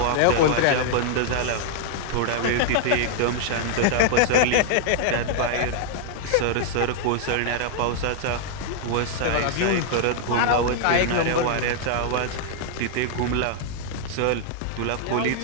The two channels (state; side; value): different; both; correlation -0.01